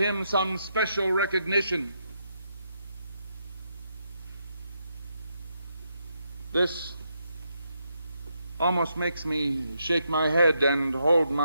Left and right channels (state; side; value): inverted; both; correlation -0.80